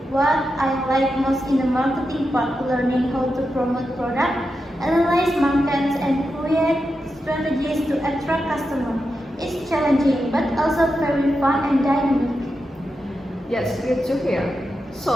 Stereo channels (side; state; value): both; normal; correlation 0.88